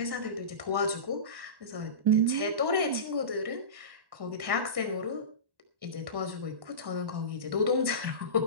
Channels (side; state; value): left; late; 1.1 ms